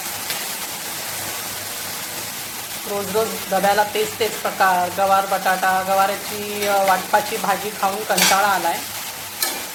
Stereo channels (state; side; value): identical; both; correlation 1.00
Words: रोज रोज डब्याला तेच प्रकार, गवार बटाटा, गवाराची वाटपाची भाजी खाऊन कंटाळा आला आहे।